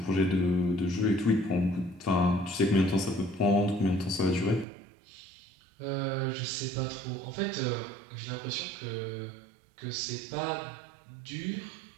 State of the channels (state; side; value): drops out; left; at 4.7 s